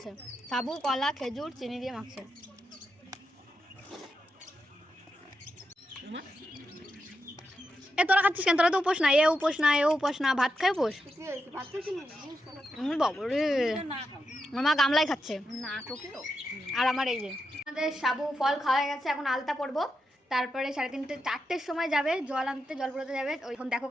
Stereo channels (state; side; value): normal; both; correlation 0.86